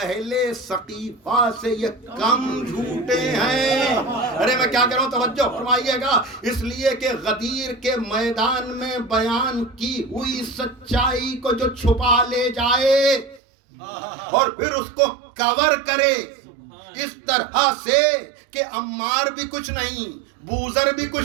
سقیفہ سے یہ کم جھوٹے ہیں۔ ارے میں کیا کہہ رہا ہوں، توجہ فرمائیے گا۔ اس لیے کہ غدیر کے میدان میں بیان کی ہوئی سچائی کو جو چھپا لے جائے اور پھر اس کو کور کرے اس طرح سے کہ عمار بھی کچھ نہیں، بوذر بھی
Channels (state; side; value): drops out; left; at 13.4 s